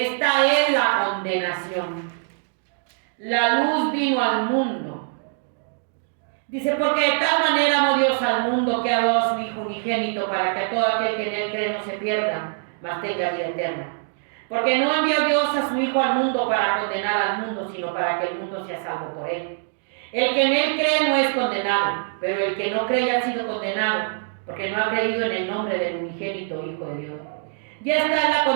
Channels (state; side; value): silent; left; digital silence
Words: es la condenación. La luz vino al mundo. Dice, porque de tal manera amó Dios al mundo que ha dado a su Hijo unigénito para que todo aquel que en Él cree no se pierda, mas tenga vida eterna. Porque no envió Dios a su Hijo al mundo para condenar al mundo, sino para que el mundo sea salvo por Él. El que en Él cree no es condenado, pero el que no cree ya ha sido condenado, porque no ha creído en el nombre del unigénito Hijo de Dios. Ya está la